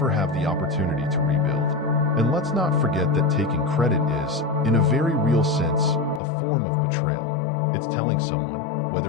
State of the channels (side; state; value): right; drops out; at 6.2 s